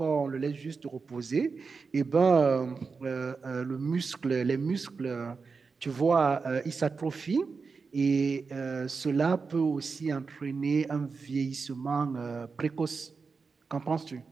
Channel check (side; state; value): left; quieter; 4.8 dB